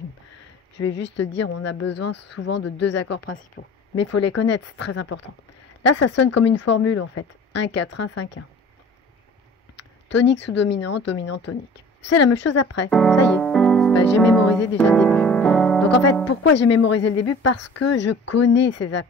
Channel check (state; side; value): normal; both; correlation 0.45